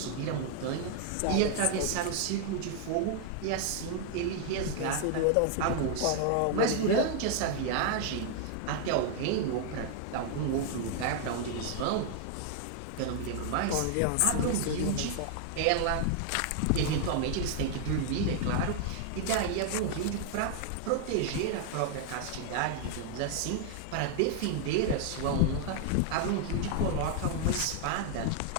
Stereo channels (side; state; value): both; different; correlation 0.00